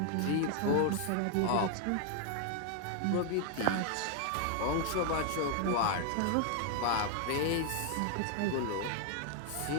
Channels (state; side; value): different; both; correlation 0.00